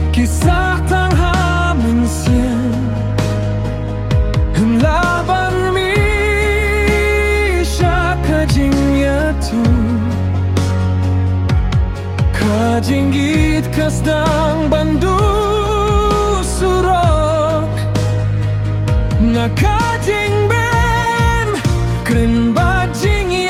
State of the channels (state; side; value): identical; both; correlation 1.00